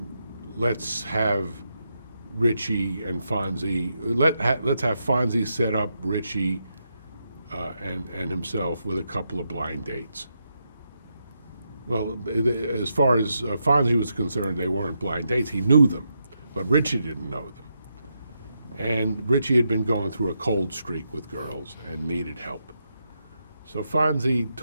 Let's have Richie and Fonzie. Let's have Fonzie set up Richie and himself with a couple of blind dates. Well, as far as Fonzie was concerned, they weren't blind dates. He knew them, but Richie didn't know them. And Richie had been going through a cold streak with girls and needed help. So Fonzie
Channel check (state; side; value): inverted; both; correlation -0.83